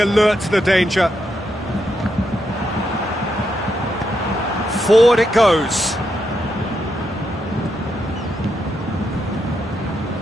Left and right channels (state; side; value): normal; both; correlation 0.82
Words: to the danger. Forward it goes.